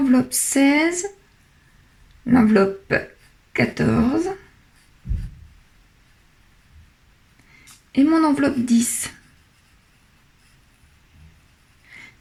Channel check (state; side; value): identical; both; correlation 1.00